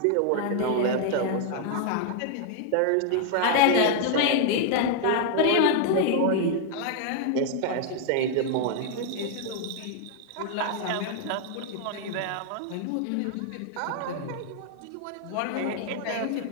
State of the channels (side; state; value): both; different; correlation 0.00